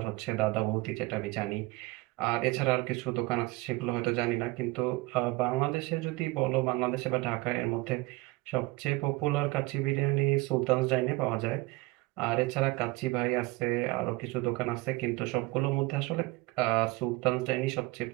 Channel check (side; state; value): left; quieter; 22.2 dB